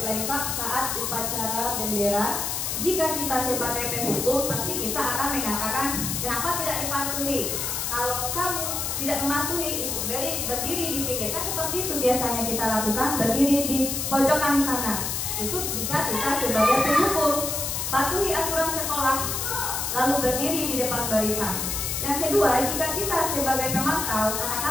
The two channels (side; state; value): left; noise; hiss, 1 dB below the sound